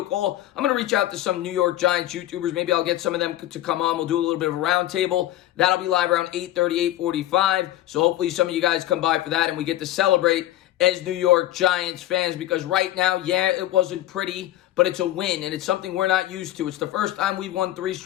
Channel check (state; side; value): quieter; right; 14.1 dB